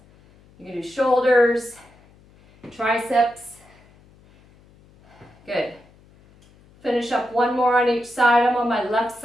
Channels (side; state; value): left; noise; hum, 28 dB below the sound